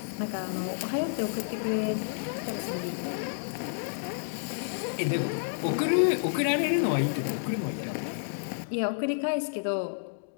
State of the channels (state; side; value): silent; right; digital silence